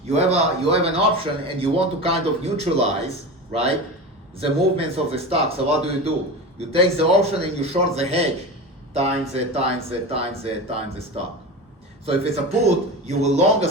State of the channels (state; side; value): normal; both; correlation 0.27